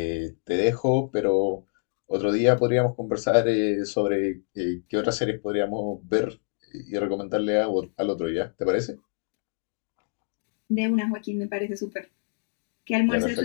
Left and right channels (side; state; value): right; silent; 61 dB below the other